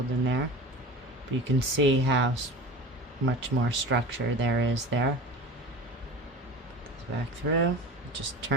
in there. But you can see how much more structure there is there. Put this back through. Just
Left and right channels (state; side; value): normal; both; correlation 0.34